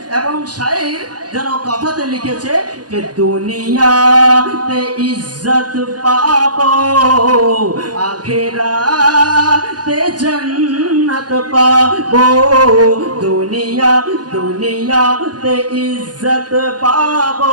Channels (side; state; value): left; late; 0.69 ms